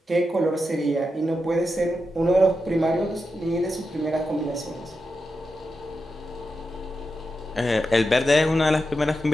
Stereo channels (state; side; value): normal; both; correlation 0.88